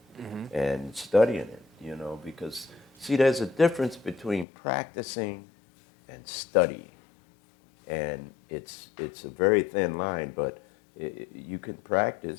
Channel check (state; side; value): drops out; right; at 4.5 s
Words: and studying it, you know, because, see, there's a difference between practicing and studying. And it's a very thin line, but you can